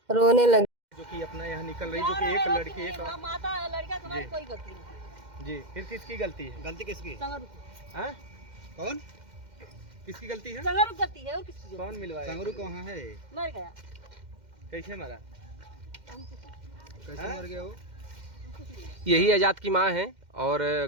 रोने लगे। जो कि अपना यहाँ निकल रही, जो कि एक लड़की एक माता लड़का तुम्हारी कोई गलती नहीं। जी, फिर किसकी गलती है? गलती किसकी? हैं? कौन? किसकी गलती है? संगरू गलती है और किसकी? कौन मिलवाया? संगरू कहाँ है? मर गया। कैसे मरा? कैसे मर गया वो? यही आजाद की माँ है और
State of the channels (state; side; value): late; left; 2.1 ms